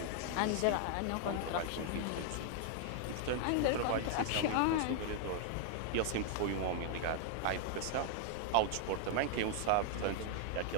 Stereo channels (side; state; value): both; different; correlation 0.00